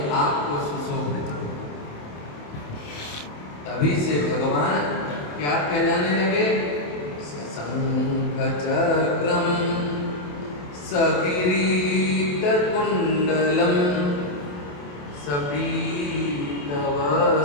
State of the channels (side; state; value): right; late; 28 ms